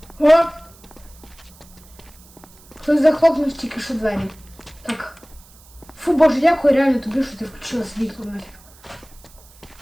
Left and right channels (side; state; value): right; noise; hiss, 25 dB below the sound